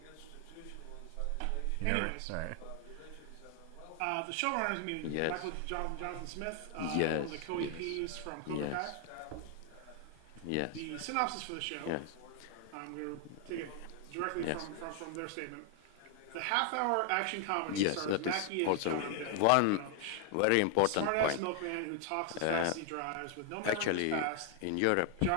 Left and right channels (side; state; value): both; different; correlation 0.00